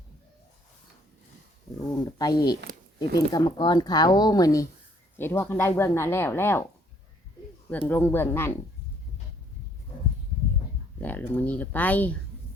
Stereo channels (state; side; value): normal; both; correlation 0.64